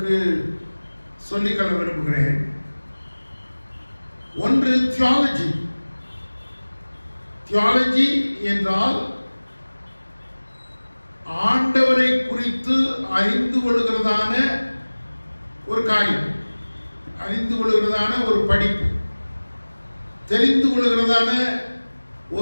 சொல்லிக்கொள்ள விரும்புகிறேன். ஒன்று தியாலஜி. தியாலஜி என்றால் ஆண்டவரை குறித்து அறிந்து கொள்கிறதான ஒரு காரியம், அறிந்து கொள்கிறதான ஒரு படிப்பு, தெரிந்து கொள்கிறதான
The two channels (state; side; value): inverted; both; correlation -1.00